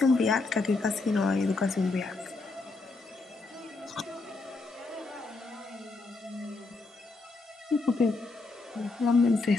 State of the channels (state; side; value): quieter; right; 3.6 dB